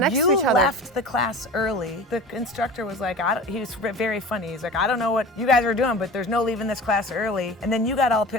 to each other. No, you left the class early. The instructor was like, he was very funny. He's like, I don't know what you guys are doing, but there's no leaving this class early. And then you got all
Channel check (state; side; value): normal; both; correlation 0.36